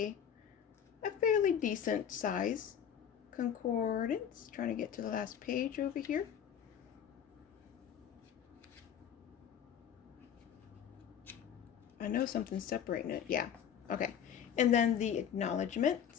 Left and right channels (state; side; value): quieter; right; 8.7 dB